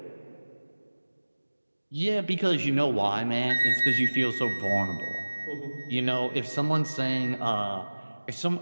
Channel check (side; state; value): both; inverted; correlation -1.00